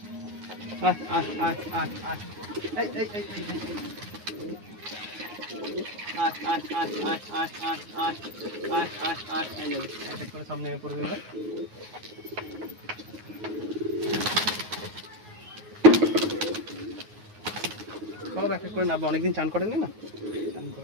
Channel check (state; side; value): late; left; 9.5 ms